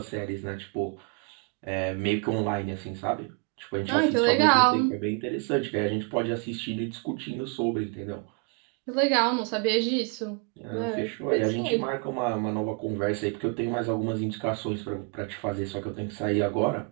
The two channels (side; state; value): left; quieter; 35.8 dB